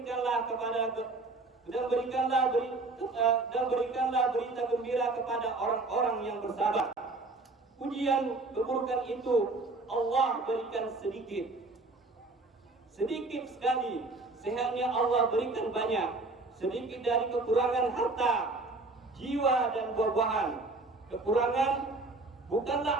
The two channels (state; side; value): quieter; left; 3.3 dB